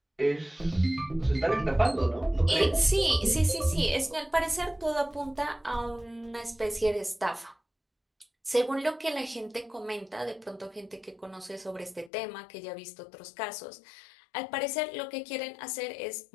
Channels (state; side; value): drops out; right; at 12.1 s